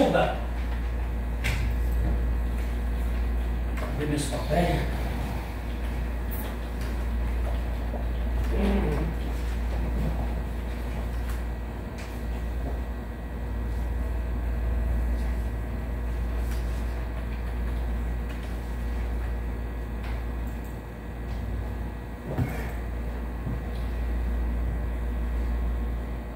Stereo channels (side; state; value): both; identical; correlation 1.00